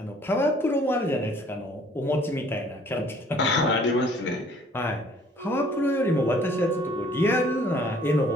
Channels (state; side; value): normal; both; correlation 0.57